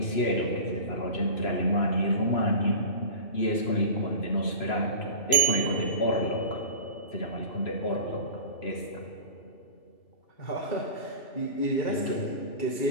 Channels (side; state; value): right; late; 3.0 ms